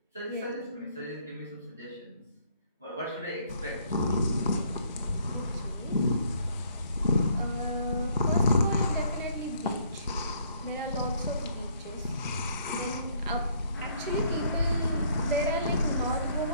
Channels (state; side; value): inverted; both; correlation -0.64